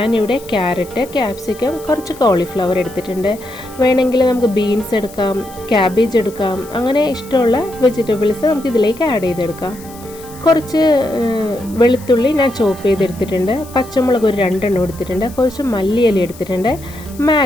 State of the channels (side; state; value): left; noise; hiss, 20 dB below the sound